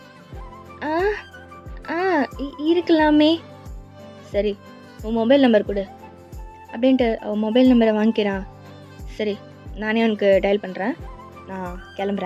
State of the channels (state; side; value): identical; both; correlation 1.00